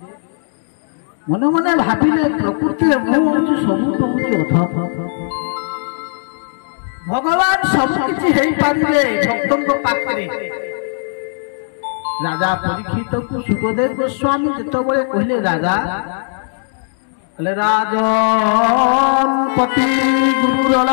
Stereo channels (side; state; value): right; silent; digital silence